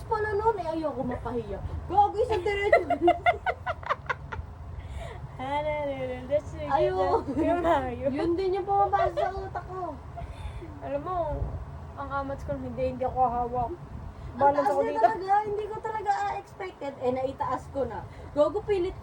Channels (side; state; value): both; identical; correlation 1.00